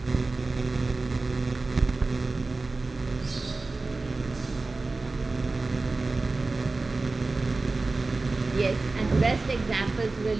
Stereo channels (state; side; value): quieter; left; 3.5 dB